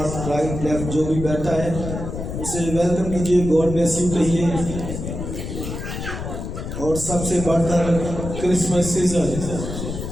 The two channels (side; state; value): left; noise; rumble, 6 dB below the sound